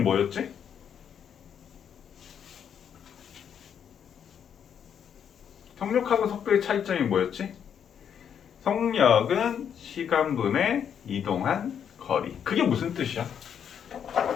속력하고 속도의 차이점이 뭐였지? 속력은 시간분의 이동한 거리. 그게 무슨 뜻이야?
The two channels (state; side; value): quieter; right; 8.3 dB